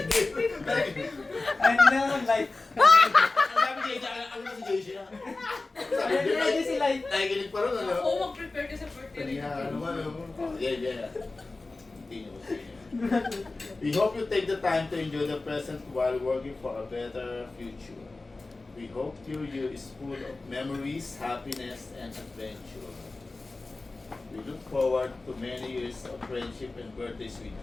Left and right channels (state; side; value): quieter; right; 3.4 dB